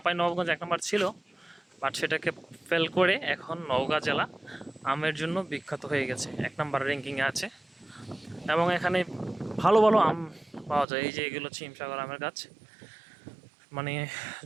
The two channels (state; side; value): drops out; left; at 10.9 s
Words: নবাবগঞ্জ 1 নম্বর ছিল, বাট সেটাকে ফেল করে এখন নওগাঁ জেলা আমের জন্য বিখ্যাত হয়ে গেছে, 1 নম্বর র্যাঙ্কিংয়ে আছে। এবং এখানে ভালো ভালো আম পাওয়া যায়। এই যে এগুলো হচ্ছে হিমসাগর আমের গাছ। মানে